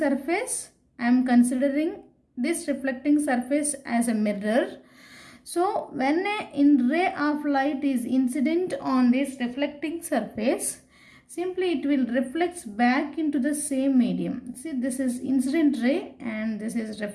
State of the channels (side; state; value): both; identical; correlation 1.00